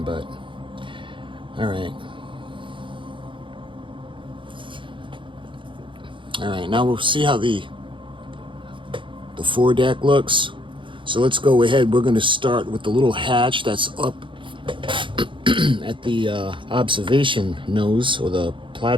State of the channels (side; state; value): left; late; 0.24 ms